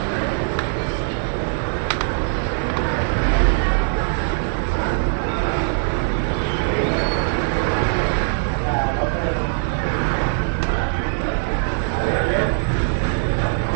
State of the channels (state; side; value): silent; left; digital silence